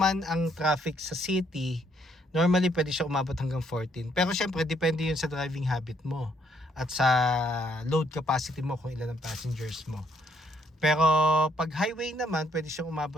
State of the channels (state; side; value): normal; both; correlation 0.70